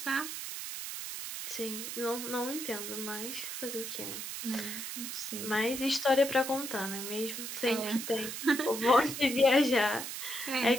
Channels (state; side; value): noise; right; hiss, 6 dB below the sound